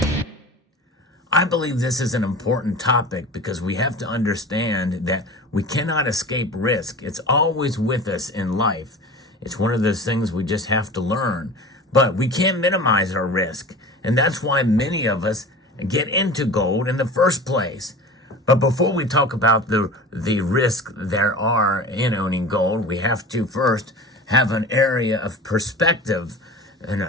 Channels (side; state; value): both; normal; correlation 0.35